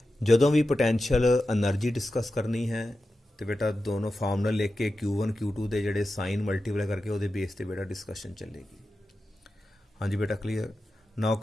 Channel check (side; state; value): both; normal; correlation 0.92